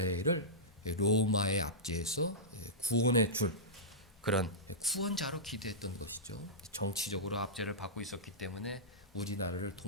로마의 압제에서 구원해 줄 그런 구원자로 기대했던 것이죠. 정치적으로 압제를 받고 있었기 때문에 우리나라를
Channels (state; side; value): normal; both; correlation -0.14